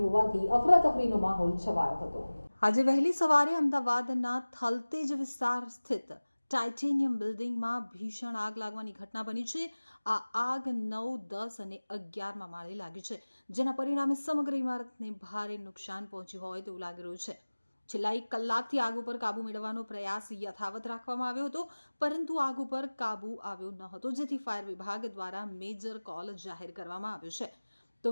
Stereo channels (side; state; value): both; inverted; correlation -1.00